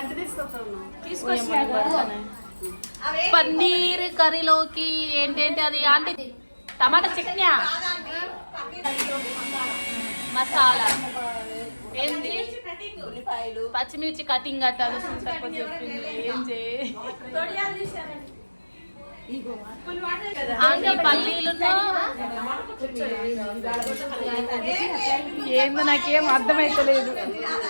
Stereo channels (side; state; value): both; inverted; correlation -1.00